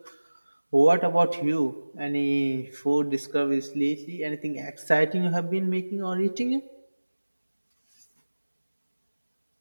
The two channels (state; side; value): inverted; both; correlation -1.00